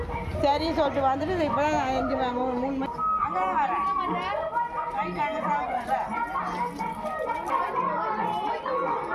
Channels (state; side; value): identical; both; correlation 1.00